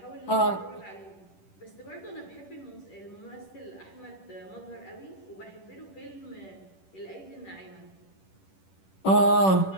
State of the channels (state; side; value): late; right; 10 ms